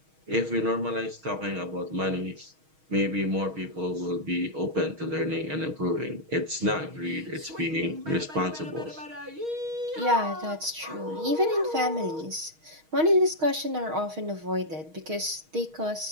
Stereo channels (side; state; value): left; late; 6.4 ms